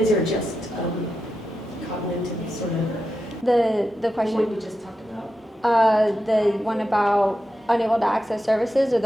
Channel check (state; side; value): normal; both; correlation 0.89